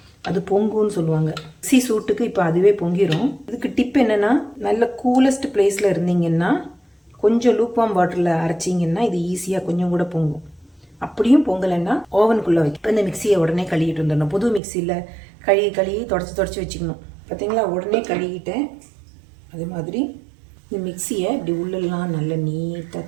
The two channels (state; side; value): drops out; left; at 14.6 s